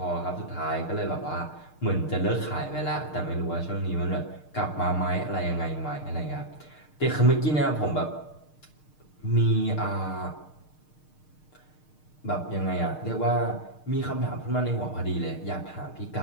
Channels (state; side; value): late; right; 6.6 ms